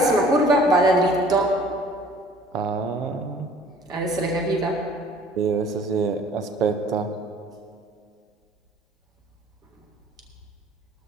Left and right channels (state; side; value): normal; both; correlation 0.53